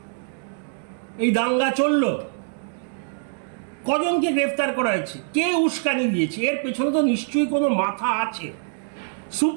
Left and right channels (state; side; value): silent; left; 63 dB below the other